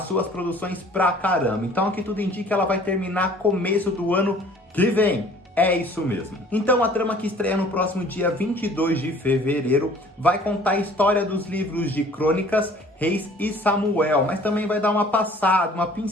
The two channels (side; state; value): both; normal; correlation 0.52